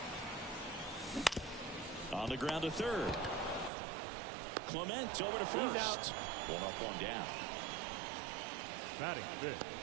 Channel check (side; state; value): left; drops out; at 3.7 s